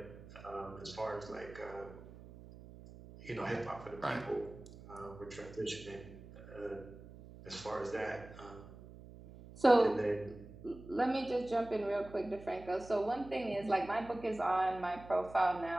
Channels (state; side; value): noise; right; hum, 17 dB below the sound